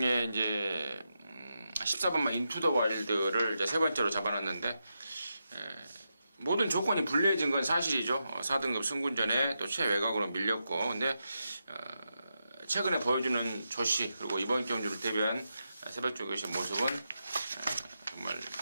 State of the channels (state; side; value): inverted; both; correlation -0.87